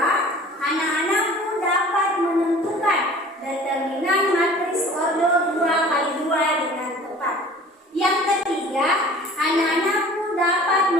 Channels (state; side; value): normal; both; correlation 0.46